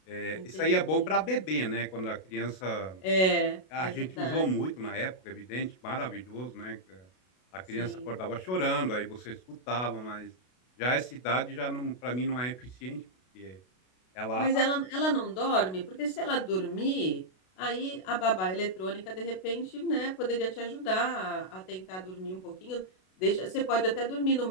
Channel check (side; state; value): right; late; 32 ms